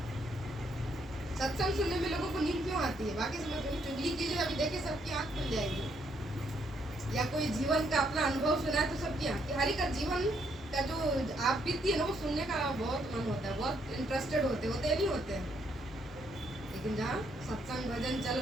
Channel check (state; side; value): normal; both; correlation 0.73